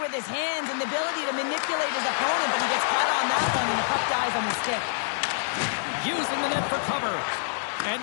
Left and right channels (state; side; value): silent; right; 61 dB below the other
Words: his hands and the ability to manipulate his opponent, but he gets caught on that one and the puck dies on his stick. Using the net for cover. And